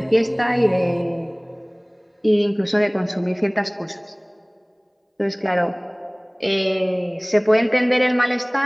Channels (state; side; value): identical; both; correlation 1.00